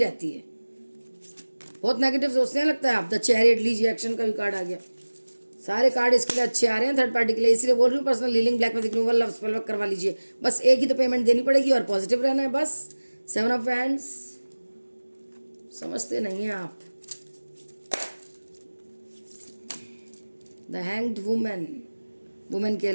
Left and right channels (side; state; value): both; inverted; correlation -1.00